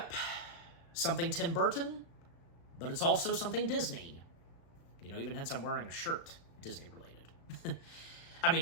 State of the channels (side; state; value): right; late; 36 ms